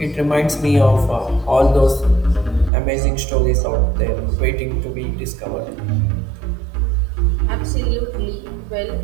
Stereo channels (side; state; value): left; drops out; at 2.7 s